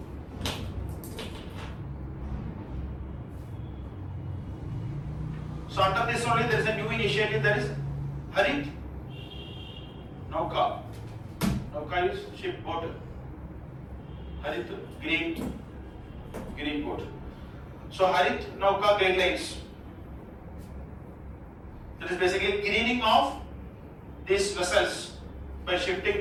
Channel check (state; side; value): identical; both; correlation 1.00